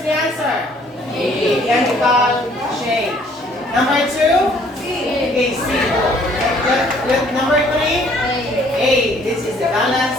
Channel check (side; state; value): both; normal; correlation 0.60